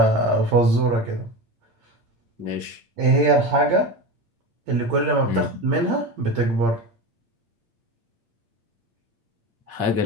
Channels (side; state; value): left; late; 8.7 ms